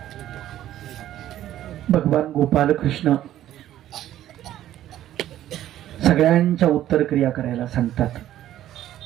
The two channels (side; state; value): left; quieter; 12.7 dB